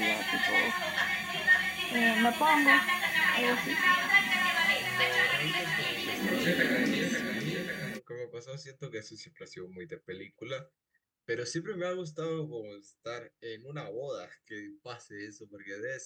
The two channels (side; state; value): both; identical; correlation 1.00